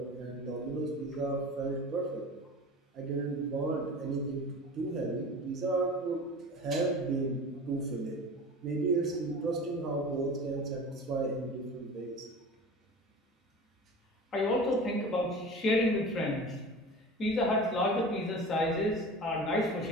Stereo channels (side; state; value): both; normal; correlation 0.36